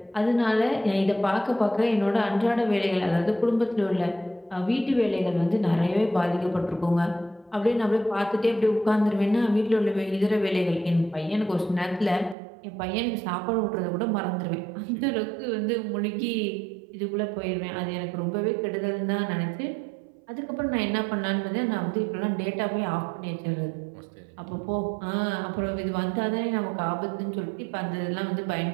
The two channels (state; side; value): drops out; left; at 12.4 s